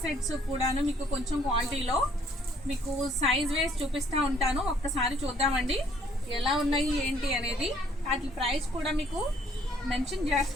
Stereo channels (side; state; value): both; normal; correlation 0.63